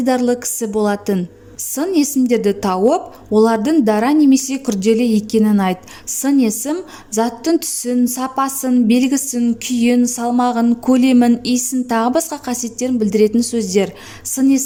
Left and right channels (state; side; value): identical; both; correlation 1.00